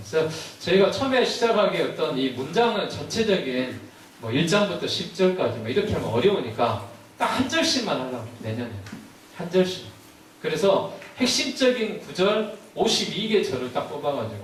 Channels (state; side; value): identical; both; correlation 1.00